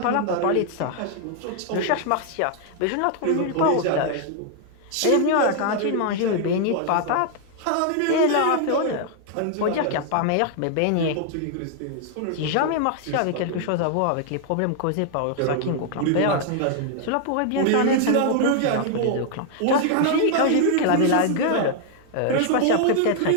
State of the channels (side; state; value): both; different; correlation 0.00